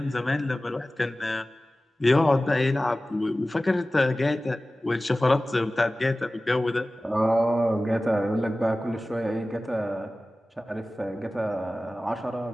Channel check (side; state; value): both; normal; correlation 0.96